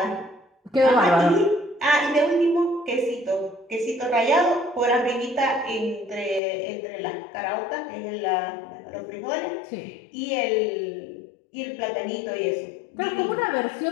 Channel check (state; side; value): drops out; right; at 6.4 s